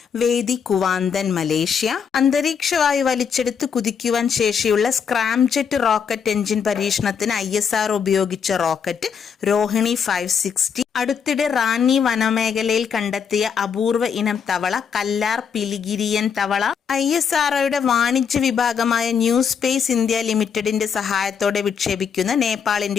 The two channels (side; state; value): right; quieter; 6.8 dB